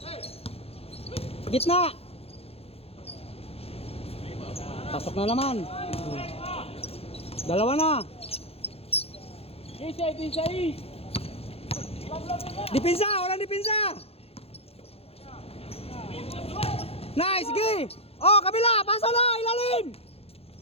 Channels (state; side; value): late; right; 0.29 ms